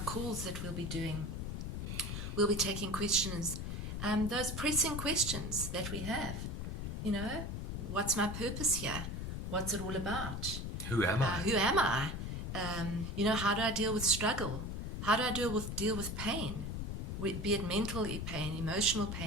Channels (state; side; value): noise; left; rumble, 4 dB below the sound